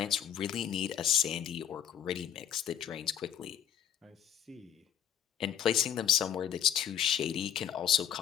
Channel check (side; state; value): right; quieter; 9.4 dB